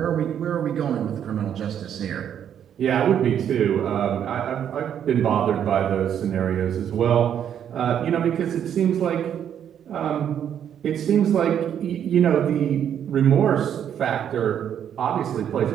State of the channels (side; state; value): left; quieter; 9.3 dB